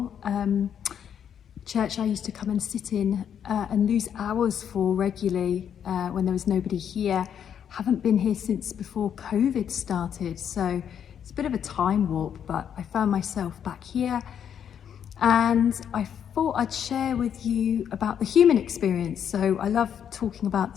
church I used to come and sit in and lose hours for regularly when there was nobody here. Haven't been here since before COVID started, so it's a bit of a time warp, but I found myself back here and I thought I'd share with you about the human experience. So I love talking about the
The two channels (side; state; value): right; quieter; 8.6 dB